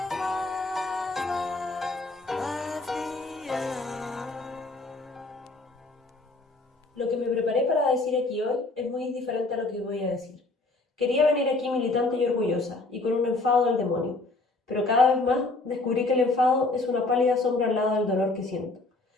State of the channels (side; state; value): right; quieter; 3.2 dB